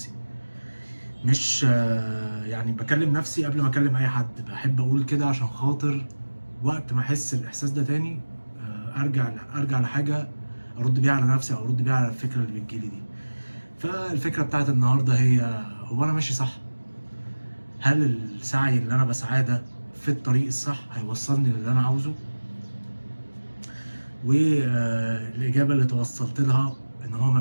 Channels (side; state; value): both; inverted; correlation -1.00